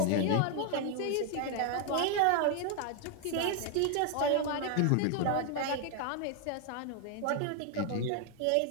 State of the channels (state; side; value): different; both; correlation 0.01